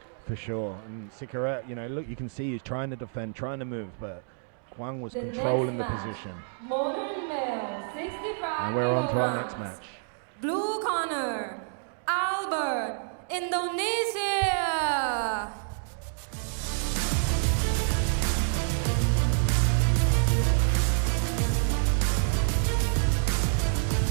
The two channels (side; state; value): left; silent; digital silence